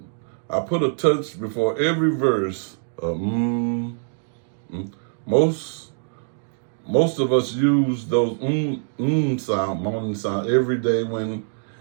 touch before every verse. Most of us use those sound, moaning sound every day when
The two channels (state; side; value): silent; left; digital silence